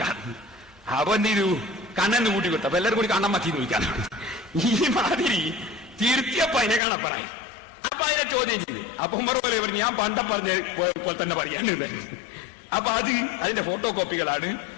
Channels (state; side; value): drops out; right; at 6.8 s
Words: അപ്പൊ എന്ത് ചെയ്തു? കണ്ണെന്ന് കൂട്ടി കൊടുത്തു. അപ്പൊ എല്ലാവരും കൂടി കണ്ണൻ മത്തീന്ന് വിളിക്കാനാണ്. ഈ മാതിരി തിരുത്തിയപ്പോ അതിനെ കാണപ്പറായി. അപ്പൊ അതിനെ ചോദ്യം ചെയ്തു. അപ്പൊ ഉമർ പോലെ പറഞ്ഞു, ഞാൻ പണ്ട പറഞ്ഞ പോലെ തന്നെ പറയാനുണ്ട്. അപ്പൊ അതിന്റെ ഫോട്ടോ കോപ്പികളാണ്